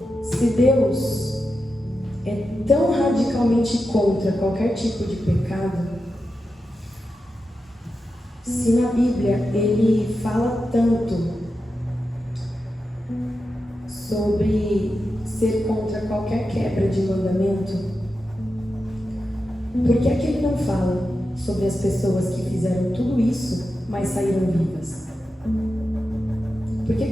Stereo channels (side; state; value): both; normal; correlation 0.90